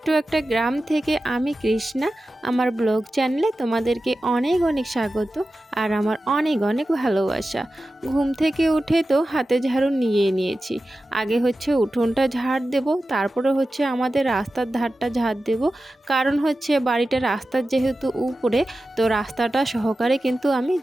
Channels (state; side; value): normal; both; correlation 0.94